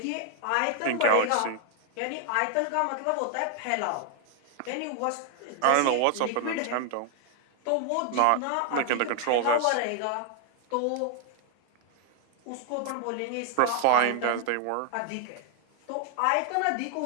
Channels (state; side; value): different; both; correlation 0.00